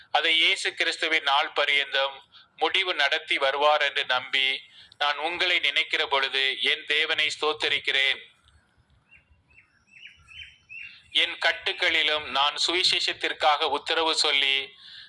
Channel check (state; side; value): identical; both; correlation 1.00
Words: அதை இயேசு கிறிஸ்துவின் நாள் பரியந்தம் முடிவு நடத்தி வருவார் என்று நம்பி நான் உங்களை நினைக்கிற பொழுது என் தேவனை ஸ்தோத்தரிக்கிறேன். என் கட்டுக்களிலும் நான் சுவிசேஷத்திற்காக உத்தரவு சொல்லி